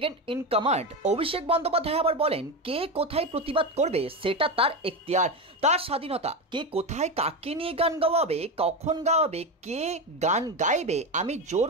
in command Abhishek Bandyopadhyay আবার বলেন, কে কোথায় প্রতিবাদ করবে সেটা তার এখতিয়ার, তার স্বাধীনতা। কে কোথায় কাকে নিয়ে গান গাওয়াবে, কখন গাওয়াবে, কে গান গাইবে আমি জোর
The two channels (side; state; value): both; normal; correlation 0.16